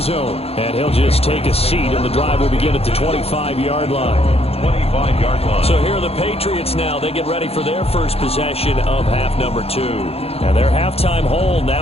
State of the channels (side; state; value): right; late; 0.29 ms